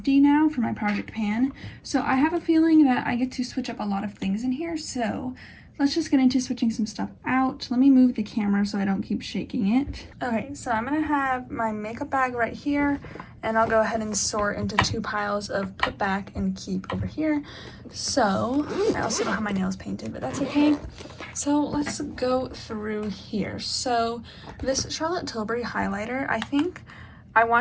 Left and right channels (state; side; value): identical; both; correlation 1.00